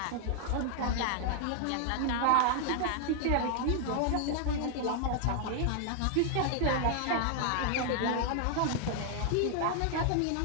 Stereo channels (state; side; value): different; both; correlation 0.00